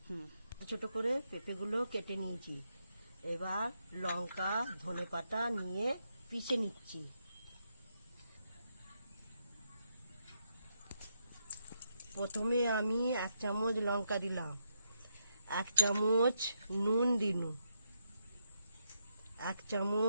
ছোট করে পেঁপেগুলো কেটে নিয়েছি। এবার লঙ্কা ধনেপাতা নিয়ে পিষে নিচ্ছি। প্রথমে আমি 1 চামচ লঙ্কা দিলাম, 1 চামচ নুন দিলাম, 1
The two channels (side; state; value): both; inverted; correlation -0.80